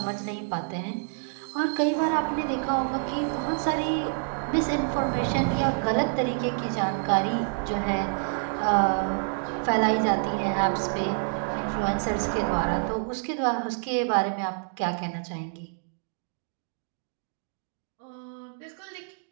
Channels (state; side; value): silent; left; digital silence